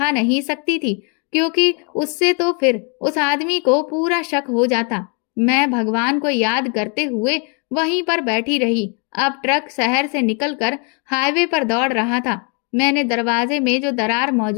नहीं सकती थी, क्योंकि उससे तो फिर उस आदमी को पूरा शक हो जाता। मैं भगवान को याद करते हुए वहीं पर बैठी रही। अब ट्रक शहर से निकलकर हाईवे पर दौड़ रहा था। मैंने दरवाजे में जो दरार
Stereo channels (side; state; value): right; quieter; 36.6 dB